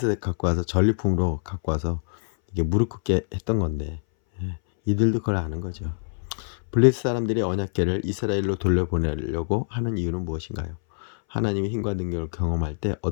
갖고 와서 전리품으로 갖고 와서 이게 무릎 꿇게 했던 건데 이들도 그걸 아는 거죠. 블레셋 사람들이 언약궤를 이스라엘로 돌려보내려고 하는 이유는 무엇인가요? 하나님의 힘과 능력을 경험할 때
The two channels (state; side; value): silent; right; 61 dB below the other